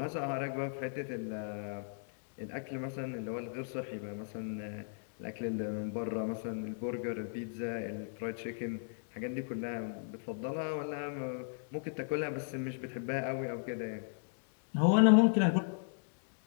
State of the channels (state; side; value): silent; right; digital silence